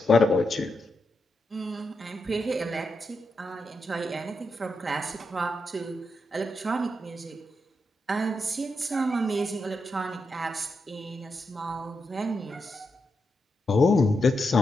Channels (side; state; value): both; normal; correlation 0.85